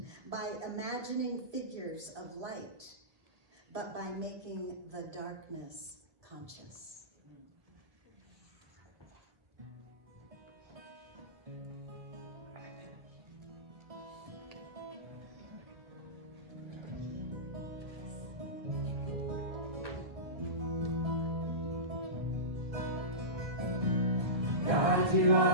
by imagining figures of light, but by making the darkness conscious." God, you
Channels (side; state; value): left; late; 1.2 ms